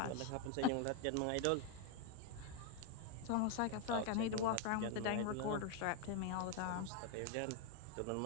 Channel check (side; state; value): both; different; correlation 0.01